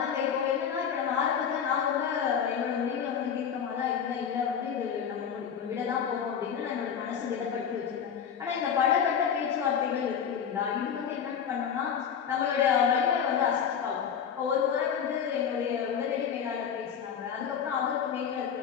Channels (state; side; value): quieter; right; 7.7 dB